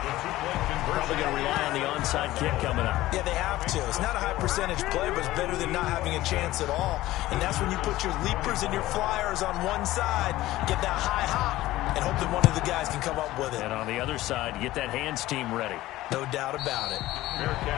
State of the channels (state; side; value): quieter; right; 16.4 dB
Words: Probably going to rely on the onside kick coming up. Yeah, they have to. It's not a high-percentage play, but it's better than not having a chance at all. And that's when you put your leapers and your flyers on one side, get that high hop, and hope that one of the guys can come up with it. And on the other side, get that hands team ready. No doubt about it. Fair